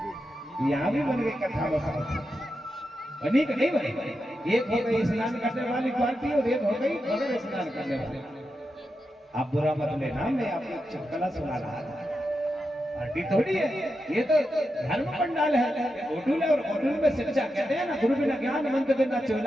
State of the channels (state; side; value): normal; both; correlation 0.88